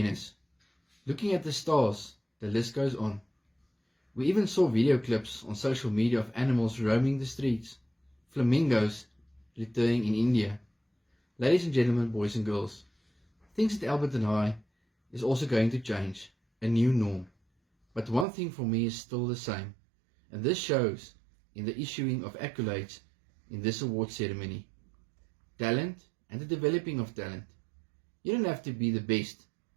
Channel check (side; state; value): left; drops out; at 18.2 s